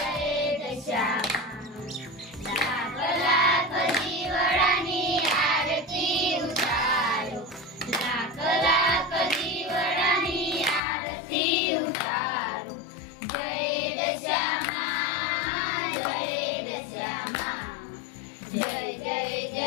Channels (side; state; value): right; drops out; at 10.8 s